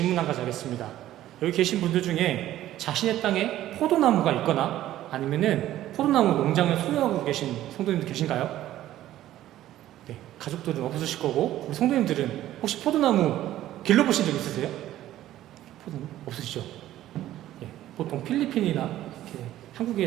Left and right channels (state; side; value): quieter; left; 13.6 dB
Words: 한 가지 하겠습니다. 여기 계신 분들 중에 자신의 땅에 포도나무가 있거나 아니면은 포도나무 농장을 소유하고 계신 성도님들 계신가요? 네, 가족들은 없으실 거고, 우리 성도님들은 혹시 포도나무 길러보신 적 있으세요? 포도나무 없으시죠? 예, 보통 필리핀이나 이렇게